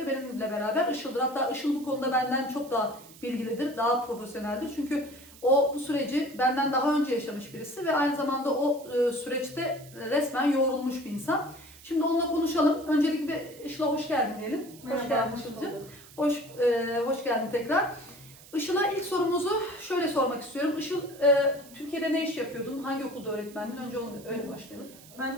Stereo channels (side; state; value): right; noise; hiss, 21 dB below the sound